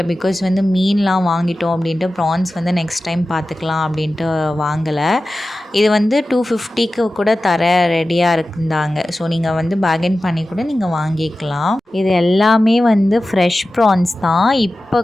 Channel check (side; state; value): both; normal; correlation 0.95